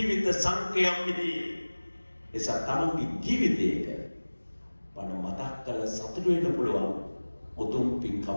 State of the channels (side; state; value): both; inverted; correlation -1.00